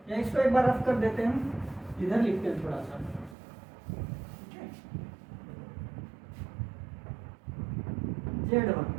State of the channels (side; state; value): left; drops out; at 3.4 s